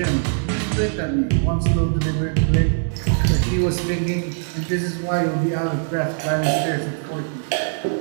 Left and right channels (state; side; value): silent; left; digital silence